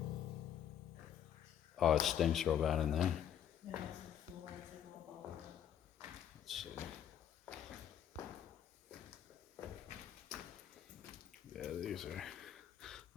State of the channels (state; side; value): quieter; right; 9.8 dB